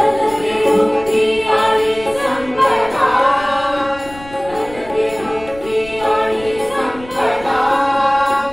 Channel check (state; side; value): noise; left; rumble, 19 dB below the sound